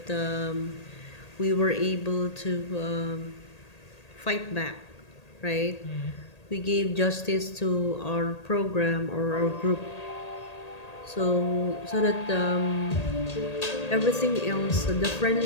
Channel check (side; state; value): right; late; 1.8 ms